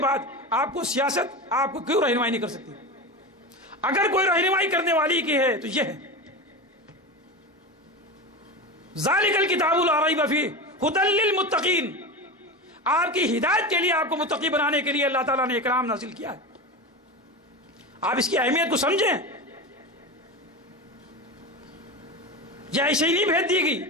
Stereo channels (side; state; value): both; normal; correlation 0.24